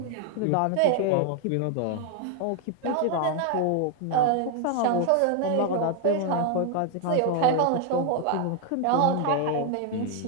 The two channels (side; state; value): both; different; correlation 0.00